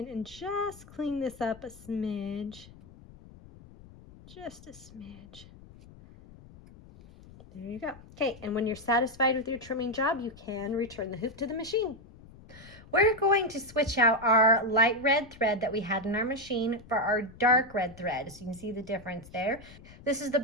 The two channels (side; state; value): left; noise; rumble, 20 dB below the sound